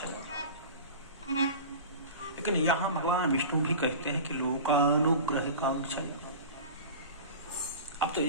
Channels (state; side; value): inverted; both; correlation -0.34